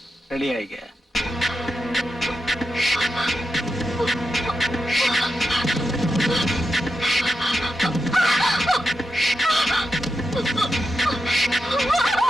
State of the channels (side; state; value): both; normal; correlation 0.88